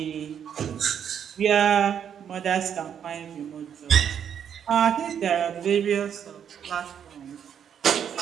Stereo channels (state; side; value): quieter; left; 8.5 dB